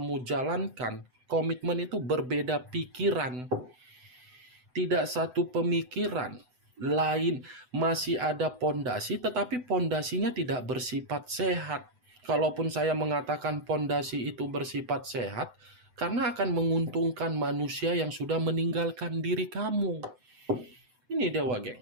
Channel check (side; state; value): left; late; 7.9 ms